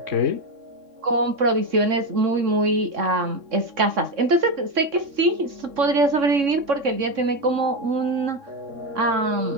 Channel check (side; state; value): left; late; 3.6 ms